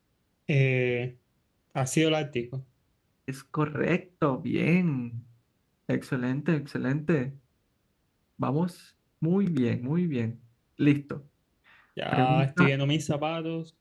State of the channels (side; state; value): both; identical; correlation 1.00